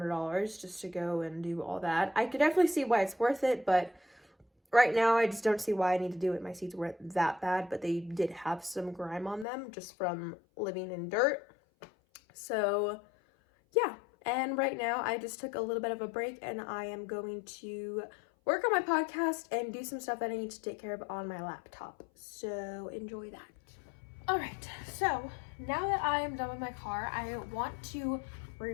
just to go and do all that. I could definitely see why it's worth it, but right now I just don't see why I need to do it. My seats weren't that bad, but they did have some grime on them just from living in dirt. So yeah, and right now I just took a little bit of a break and I am going to work on my podcast and do some stuff that I need to take care of on my laptop. So enjoy that. All right, so now that I am done with my car, I want to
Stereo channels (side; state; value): right; drops out; at 9.5 s